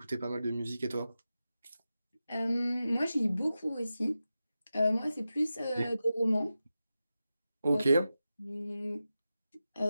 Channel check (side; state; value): both; inverted; correlation -0.92